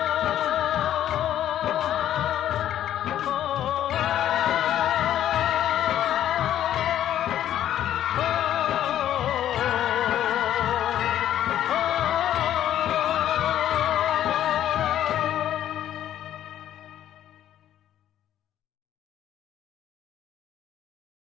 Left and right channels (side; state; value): right; quieter; 11.4 dB